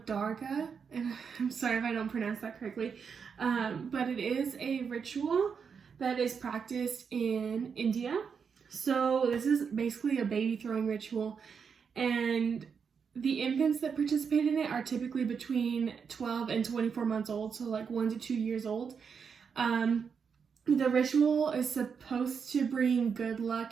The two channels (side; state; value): left; quieter; 6.3 dB